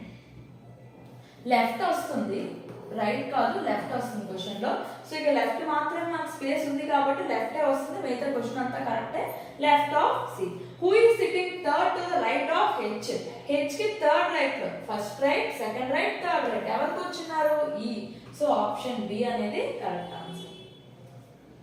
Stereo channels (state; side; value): identical; both; correlation 1.00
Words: లెఫ్ట్ వస్తుంది, right కాదు, లెఫ్ట్ వస్తుంది క్వశ్చన్ లో. సో ఇక లెఫ్ట్ మాత్రమే మనకు స్పేస్ ఉంది కాబట్టి లెఫ్ట్ వస్తుంది, మిగతా క్వశ్చన్ అంతా కరెక్టే. Left of C. Who is sitting third to the right of H. H కి థర్డ్ రైట్ లో, first right, second right, third right ఎవరు కూర్చున్నారు, ఈ. సో ఆప్షన్ బి అనేది correct answer.